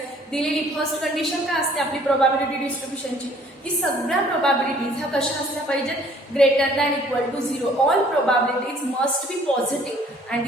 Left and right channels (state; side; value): normal; both; correlation 0.57